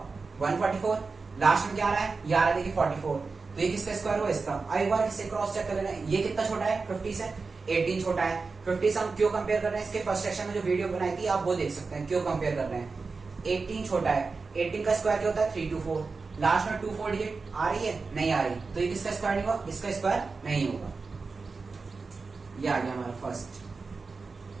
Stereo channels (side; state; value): left; quieter; 4.3 dB